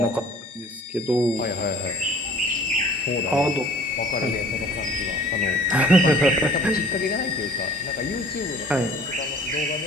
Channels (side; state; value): both; normal; correlation 0.50